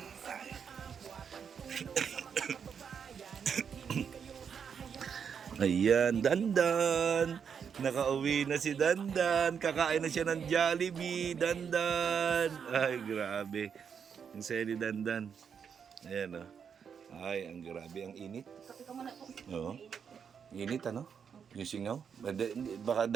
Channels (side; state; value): left; quieter; 7.0 dB